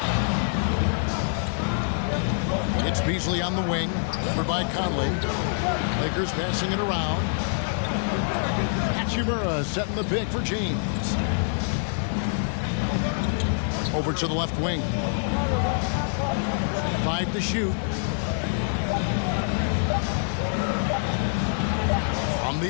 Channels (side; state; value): right; silent; digital silence